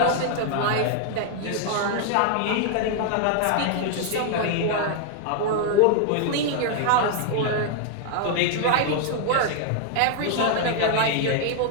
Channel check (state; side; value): different; both; correlation 0.00